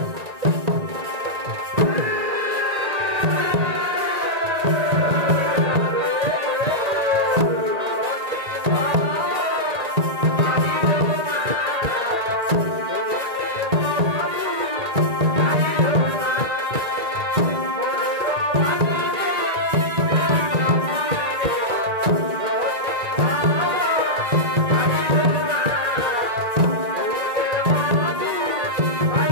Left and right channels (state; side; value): late; left; 1.9 ms